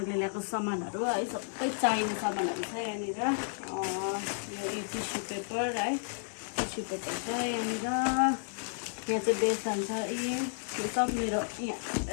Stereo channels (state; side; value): silent; right; digital silence